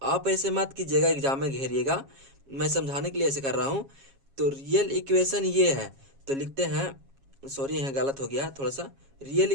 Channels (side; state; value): left; late; 7.3 ms